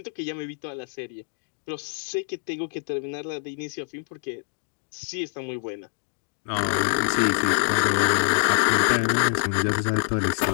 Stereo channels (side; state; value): right; silent; 60 dB below the other